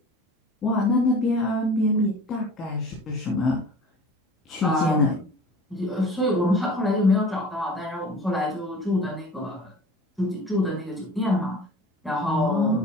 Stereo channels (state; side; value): normal; both; correlation 0.42